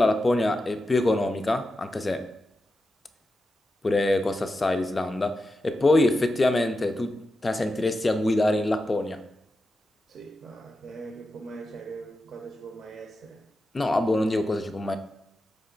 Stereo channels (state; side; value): normal; both; correlation 0.90